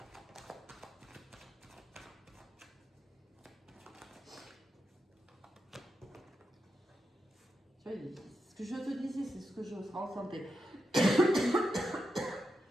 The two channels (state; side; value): normal; both; correlation 0.87